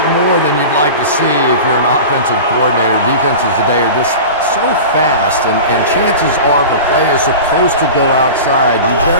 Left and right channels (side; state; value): both; inverted; correlation -0.33